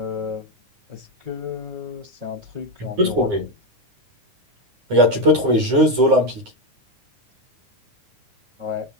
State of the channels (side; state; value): left; late; 9.7 ms